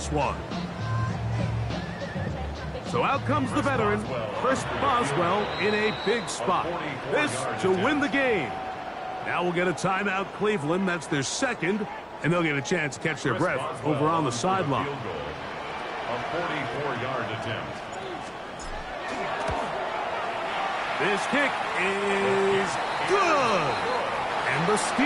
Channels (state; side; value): identical; both; correlation 1.00